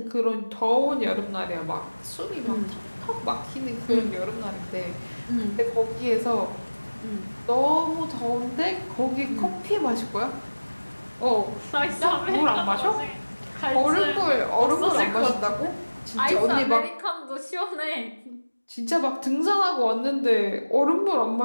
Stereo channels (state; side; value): inverted; both; correlation -1.00